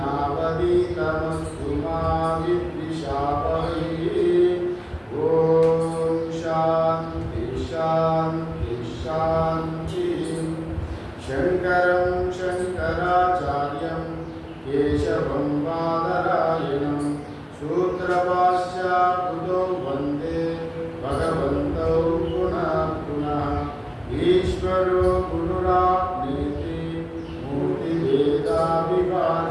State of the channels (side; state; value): both; identical; correlation 1.00